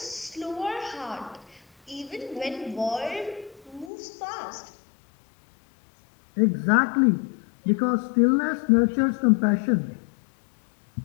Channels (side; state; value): right; drops out; at 3.9 s